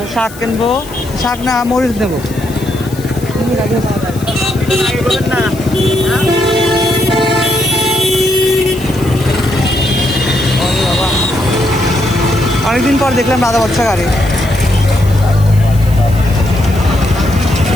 শাক কিনবো। শাক না মরিচ নেবো। অনেকদিন পর দেখলাম দাদা বাচ্চা গাড়ি।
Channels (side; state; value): left; noise; hiss, 18 dB below the sound